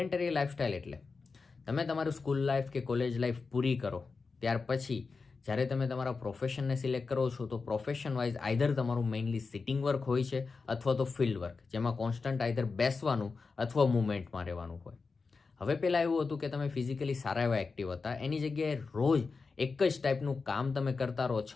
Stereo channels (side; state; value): right; quieter; 4.5 dB